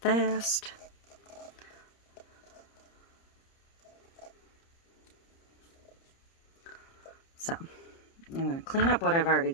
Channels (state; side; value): late; right; 30 ms